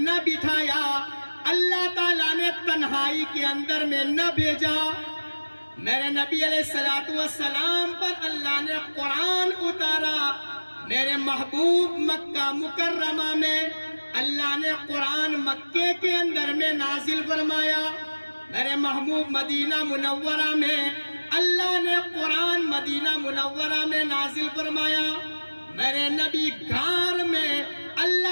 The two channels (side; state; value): both; inverted; correlation -1.00